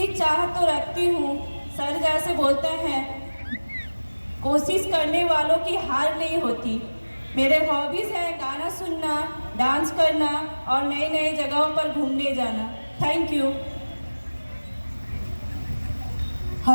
चाह तो रखती हूँ। सर जैसे बोलते हैं, कोशिश करने वालों की हार नहीं होती। मेरे हॉबीज हैं गाना सुनना, डांस करना और नई नई जगहों पर घूमने जाना। Thank you.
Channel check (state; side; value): inverted; both; correlation -1.00